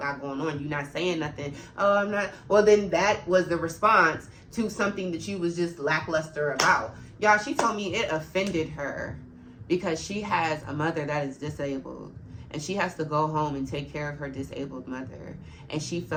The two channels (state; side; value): identical; both; correlation 1.00